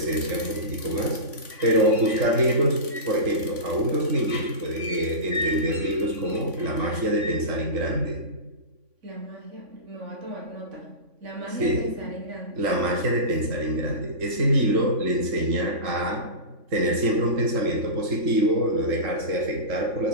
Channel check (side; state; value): left; late; 3.5 ms